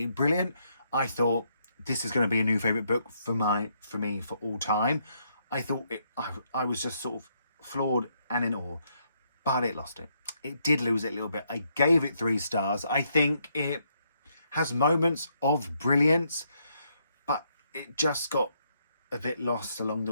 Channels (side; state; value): both; inverted; correlation -0.74